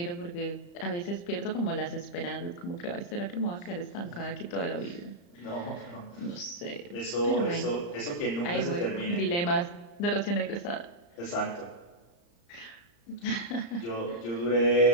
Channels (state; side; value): late; right; 35 ms